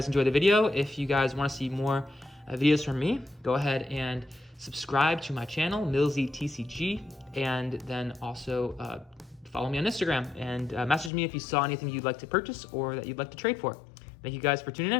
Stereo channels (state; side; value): drops out; right; at 11.1 s